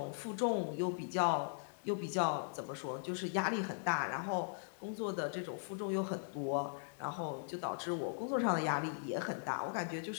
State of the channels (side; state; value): right; silent; digital silence